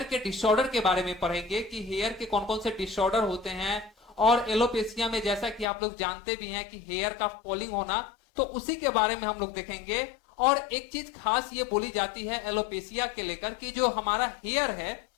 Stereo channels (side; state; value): right; drops out; at 5.7 s